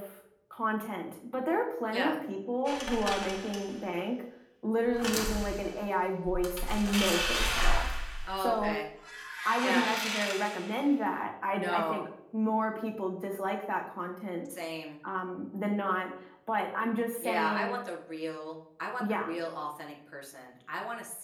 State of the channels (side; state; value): both; identical; correlation 1.00